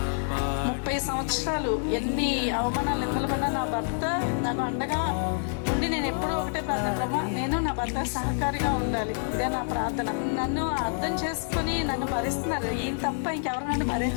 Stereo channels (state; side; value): silent; right; digital silence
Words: 30 సంవత్సరాలు ఎన్ని అవమానాలు నిందలపడినా నా భర్త నాకు అండగా ఉండి నేను ఎప్పుడూ ఒకటే ప్రార్థన, ప్రభా నేను నా భర్త సహకారిగా ఉండాలి, ఇదే నా ప్రార్థన. నన్ను అర్థం చేసుకొని నన్ను భరిస్తున్నారు. ఈయన తప్ప ఇంకెవరు నన్ను